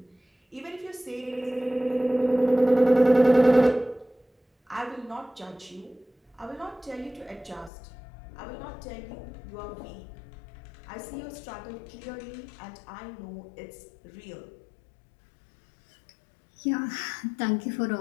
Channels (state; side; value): drops out; right; at 7.7 s